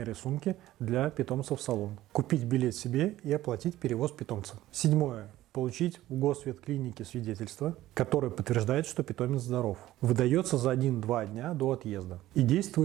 сумки для питомца в салон. Купить билет себе и оплатить перевоз питомца. Седьмое. Получить в госветклинике свидетельство, которое подтверждает, что питомец здоров. Выдается за 1-2 дня до отъезда и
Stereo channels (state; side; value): quieter; left; 15.1 dB